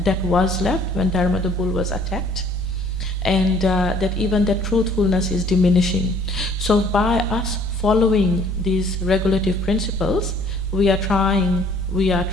was left when Dharma the bull was attacked. And that even that truthfulness is diminishing. So by us following these regulative principles, we are trying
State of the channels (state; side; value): noise; left; rumble, 14 dB below the sound